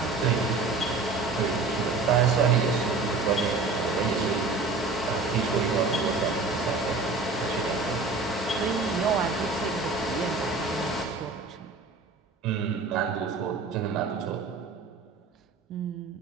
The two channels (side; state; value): left; quieter; 3.8 dB